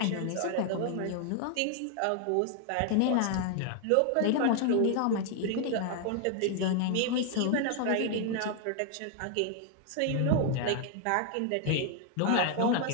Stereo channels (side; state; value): both; different; correlation 0.00